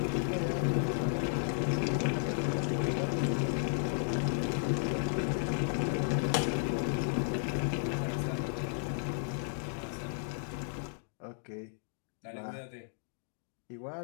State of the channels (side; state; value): right; silent; digital silence